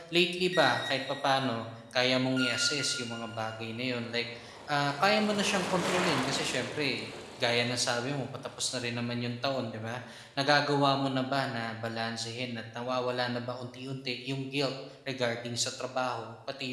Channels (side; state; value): both; identical; correlation 1.00